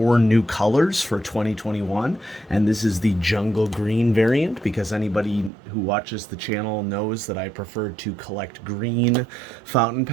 new colors for 2021. And this is the jungle green variant, because anybody who watches the channel knows that I prefer to collect green fountain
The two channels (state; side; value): drops out; left; at 5.5 s